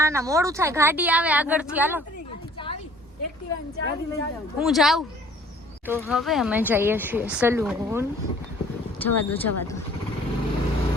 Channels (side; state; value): both; normal; correlation 0.54